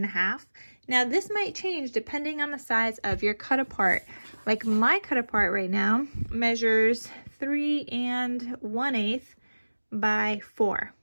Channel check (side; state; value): both; inverted; correlation -1.00